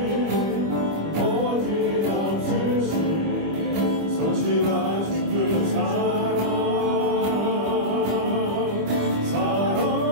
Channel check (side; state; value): left; late; 25 ms